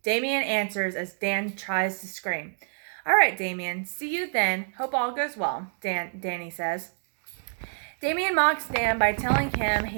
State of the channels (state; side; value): silent; left; digital silence